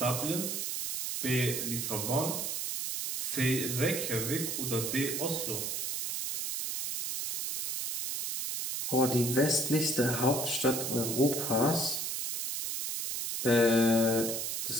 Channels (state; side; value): noise; right; hiss, 3 dB below the sound